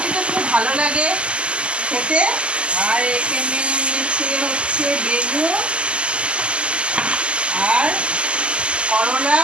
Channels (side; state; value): left; late; 0.053 ms